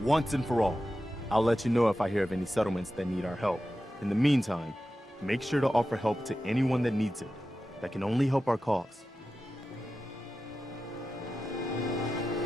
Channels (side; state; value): both; normal; correlation 0.92